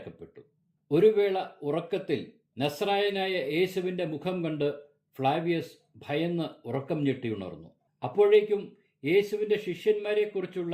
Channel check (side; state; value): both; identical; correlation 1.00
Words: ഒരു വേള ഉറക്കത്തിൽ നസ്രായനായ യേശുവിന്റെ മുഖം കണ്ട് ഫ്ലാവിയസ് ഭയന്ന് ഉറക്കം ഞെട്ടിയുണർന്നു. അപ്പോഴേക്കും യേശുവിന്റെ ശിഷ്യന്മാരെക്കുറിച്ചുള്ള